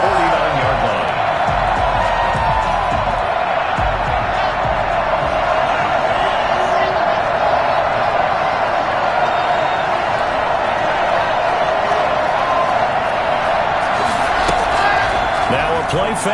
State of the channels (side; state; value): both; identical; correlation 1.00